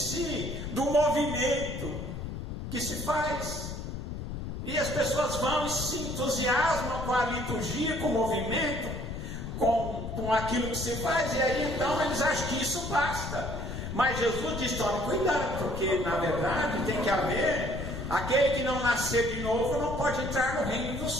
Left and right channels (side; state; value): left; noise; rumble, 6 dB below the sound